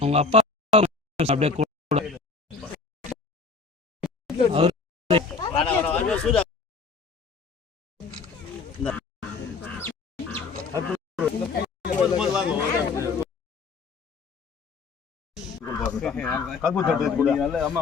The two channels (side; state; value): right; quieter; 4.6 dB